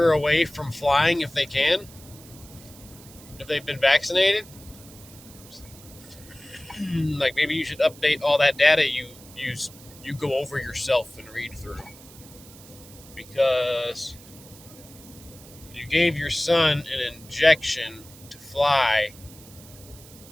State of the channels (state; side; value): noise; right; hiss, 20 dB below the sound